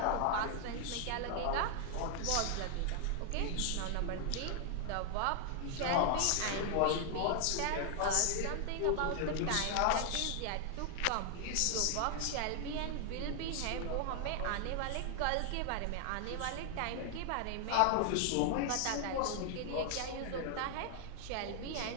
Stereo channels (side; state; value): both; different; correlation 0.00